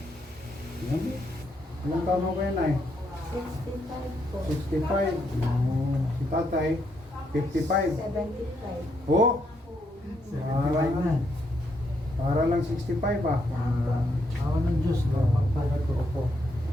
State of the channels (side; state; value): both; normal; correlation 0.76